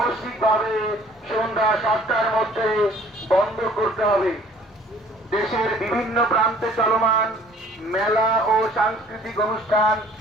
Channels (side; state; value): both; normal; correlation 0.55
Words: সন্ধ্যা 7টার মধ্যে বন্ধ করতে হবে। দেশের বিভিন্ন প্রান্তে চলমান মেলা ও সাংস্কৃতিক অনুষ্ঠান